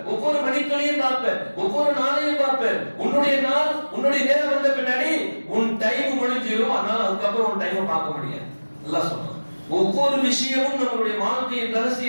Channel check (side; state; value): both; inverted; correlation -1.00